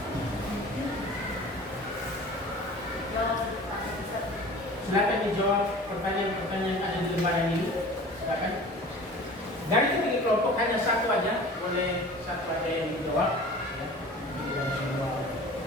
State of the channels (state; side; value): normal; both; correlation 0.41